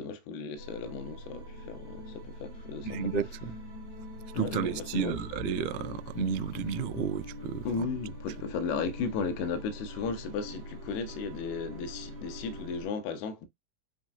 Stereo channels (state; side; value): late; right; 18 ms